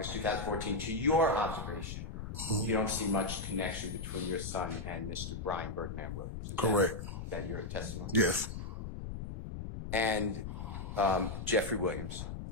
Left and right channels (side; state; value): left; noise; rumble, 6 dB below the sound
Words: 2014, to your observation, you don't see much connection between your son and Mr. Brian Birdman Williams. Is correct. that your testimony? Yes, And Jeffrey Williams,